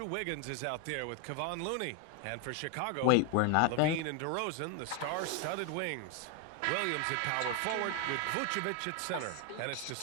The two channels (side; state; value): both; different; correlation 0.01